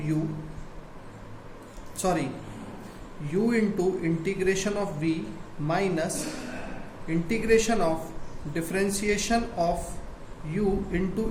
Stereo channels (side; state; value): both; identical; correlation 1.00